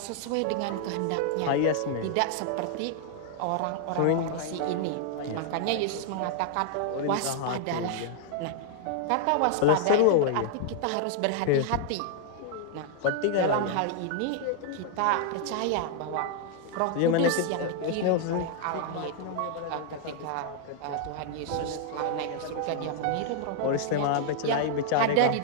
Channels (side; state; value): both; different; correlation -0.01